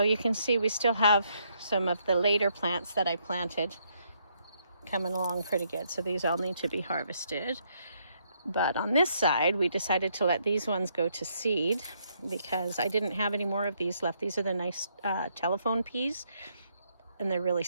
you can see we still have some of the later plants that I planted coming along pretty good. So these all need to be harvested. But on this side, we decided to let these ones go to seed because I didn't have any more of these left. These are the nice telephone peas, and they're really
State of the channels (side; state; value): both; inverted; correlation -0.73